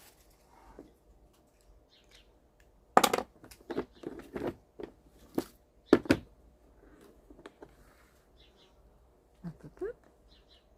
Hop, hop, hop.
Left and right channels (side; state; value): both; identical; correlation 1.00